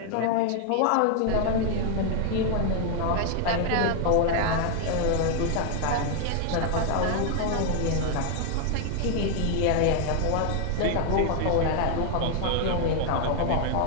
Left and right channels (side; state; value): both; different; correlation 0.00